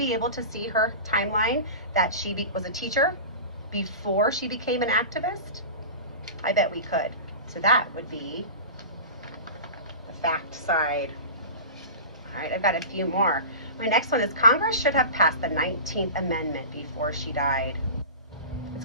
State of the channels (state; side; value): inverted; both; correlation -0.32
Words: able to see her timeline that she was a teacher before she became an activist? I bet we could. So that would be the fact side. All right, I've got a few more. My next one is Congress should have passed the 19th Amendment before she died. It's